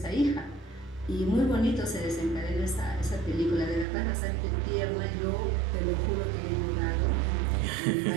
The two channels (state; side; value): drops out; left; at 3.9 s